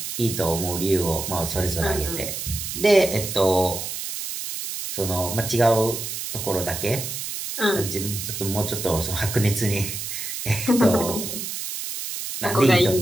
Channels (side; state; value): right; noise; hiss, 6 dB below the sound